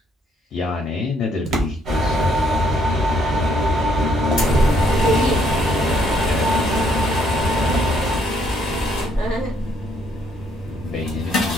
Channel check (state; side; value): normal; both; correlation 0.69